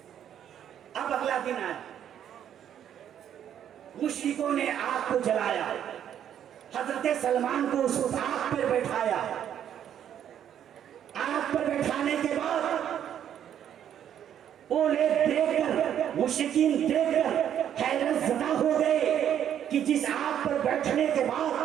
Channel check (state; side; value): quieter; left; 9.8 dB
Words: अब अगला दिन आया, मुश्रिकों ने आग को जलाया, हजरत सलमान को उस आग पर बैठाया। आग पर बैठाने के बाद वो लोग देखकर, मुश्रिकीन देखकर हैरत ज़दा हो गए कि जिस आग पर बैठने के बाद